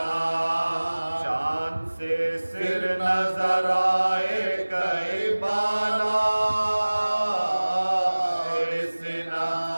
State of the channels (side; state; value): both; inverted; correlation -1.00